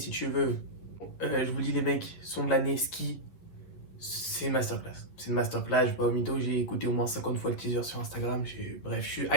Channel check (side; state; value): right; late; 11 ms